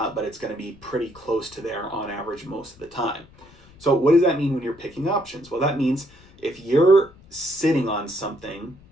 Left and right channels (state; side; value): noise; left; rumble, 25 dB below the sound